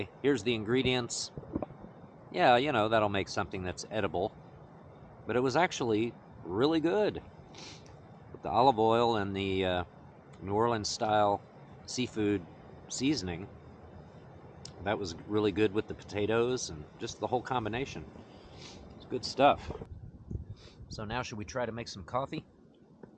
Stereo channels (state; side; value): identical; both; correlation 1.00